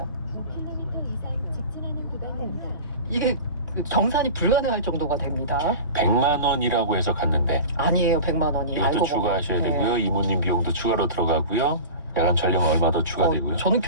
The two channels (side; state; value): both; inverted; correlation -0.34